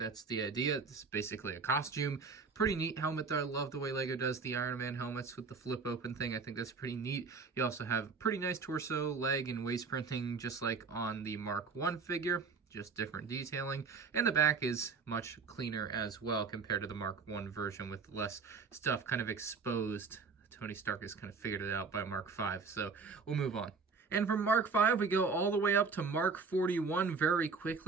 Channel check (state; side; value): quieter; left; 4.9 dB